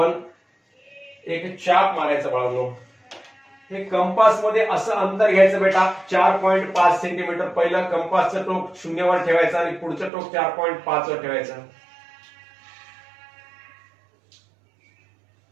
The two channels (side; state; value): left; drops out; at 10.1 s